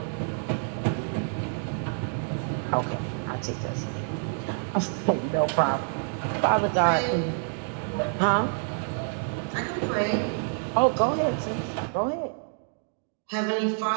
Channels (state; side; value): silent; left; 60 dB below the other